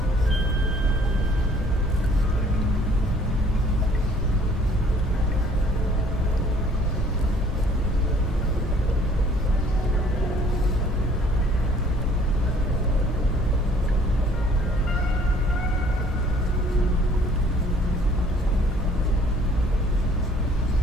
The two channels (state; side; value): normal; both; correlation 0.57